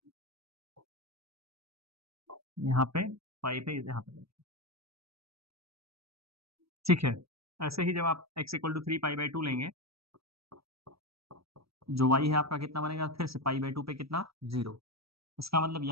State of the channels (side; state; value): left; late; 0.76 ms